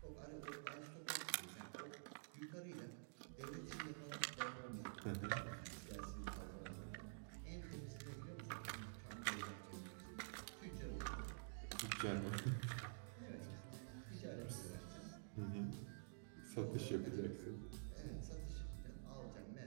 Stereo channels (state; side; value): silent; left; digital silence